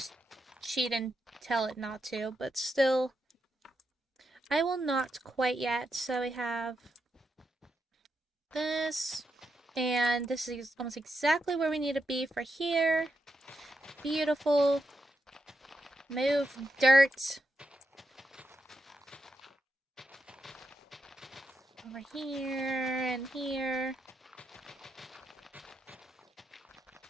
cheat and tell it not to, but still, I will not quite yet. So we have this, and this is almost exactly where we need to be for here. Beautiful. Move dirt. Over here and here.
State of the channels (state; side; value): normal; both; correlation 0.84